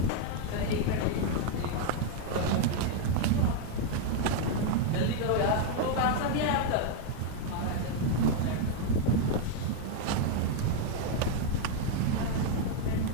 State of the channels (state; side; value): different; both; correlation 0.00